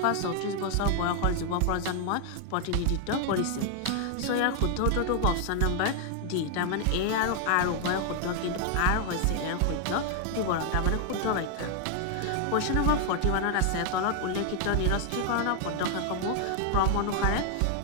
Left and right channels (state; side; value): different; both; correlation 0.00